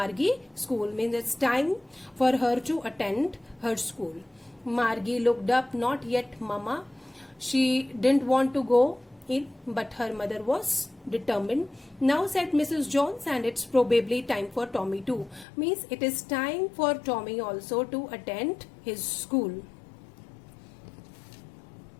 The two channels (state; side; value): drops out; right; at 15.5 s